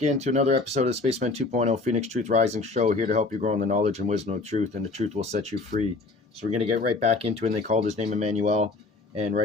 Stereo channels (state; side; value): quieter; right; 3.6 dB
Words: into another episode of Spaceman 2.0 Phoenix Truth Rising Show, here to help you grow in the knowledge and wisdom of truth, and the truth will set you free. So we're going to get right back into it, and they called his name IMMANUEL, and